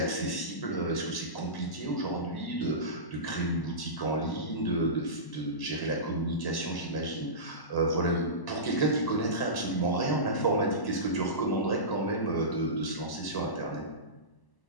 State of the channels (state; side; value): late; right; 1.0 ms